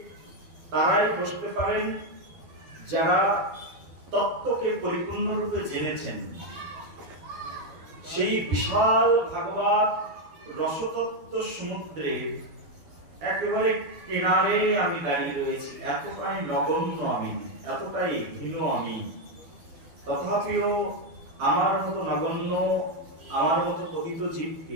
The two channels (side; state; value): left; late; 12 ms